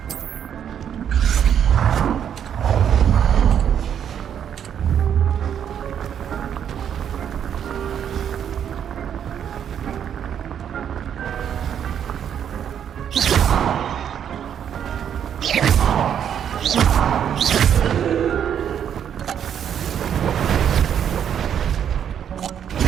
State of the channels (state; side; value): quieter; left; 8.9 dB